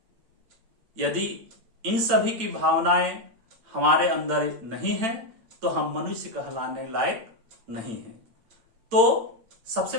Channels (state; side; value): late; left; 8.8 ms